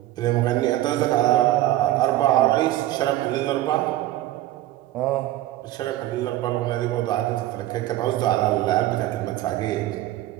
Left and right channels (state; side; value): quieter; left; 14.9 dB